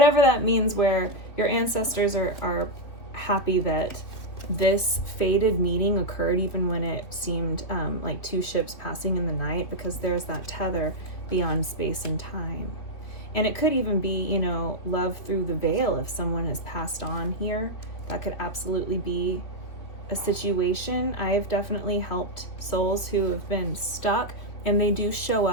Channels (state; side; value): late; right; 3.3 ms